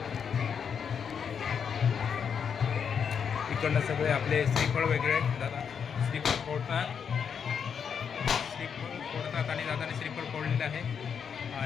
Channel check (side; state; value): right; quieter; 7.1 dB